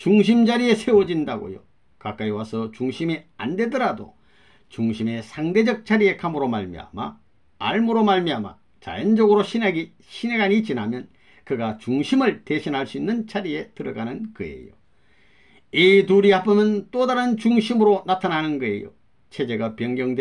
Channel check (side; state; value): both; identical; correlation 1.00